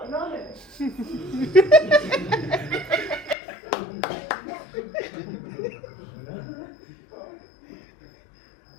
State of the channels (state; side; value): drops out; right; at 3.4 s